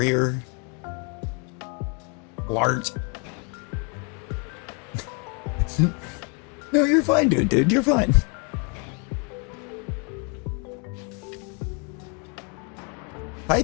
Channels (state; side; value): quieter; right; 33.3 dB